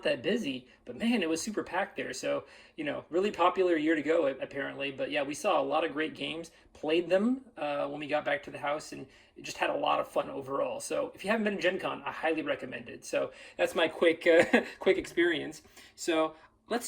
that busy, but man, it was super packed there. So, really popular year to go apparently. But yeah, we saw a lot of great games, played them when we got back to the house, and it just had a lot of fun overall. So if you haven't been to Gen Con, I highly recommend it. So that's my quick experience. So let's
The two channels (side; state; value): both; identical; correlation 1.00